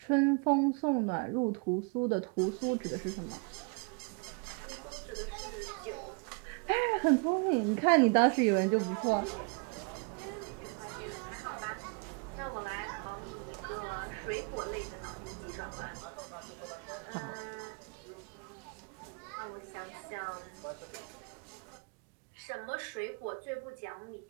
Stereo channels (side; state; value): left; quieter; 34.9 dB